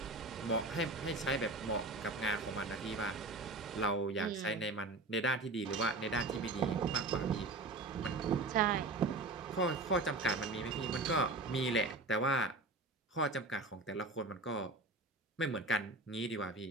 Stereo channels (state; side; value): quieter; left; 3.1 dB